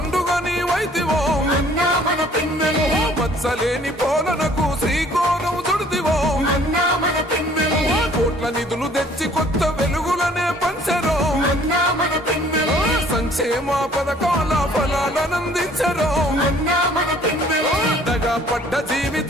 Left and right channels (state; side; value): normal; both; correlation 0.57